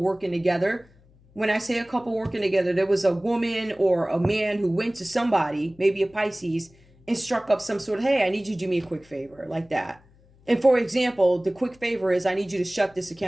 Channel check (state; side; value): noise; left; hum, 29 dB below the sound